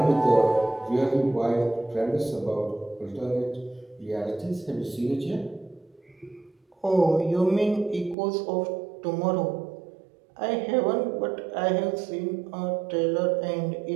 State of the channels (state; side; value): drops out; left; at 8.2 s